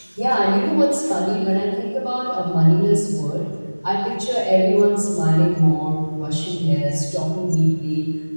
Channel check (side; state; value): both; inverted; correlation -1.00